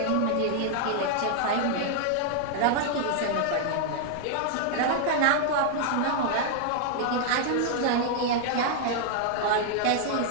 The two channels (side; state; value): both; different; correlation 0.00